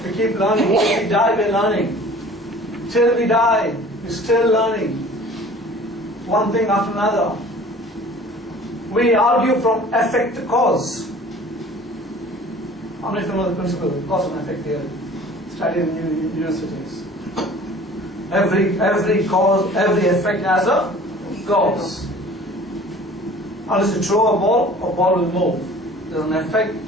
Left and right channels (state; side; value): normal; both; correlation 0.47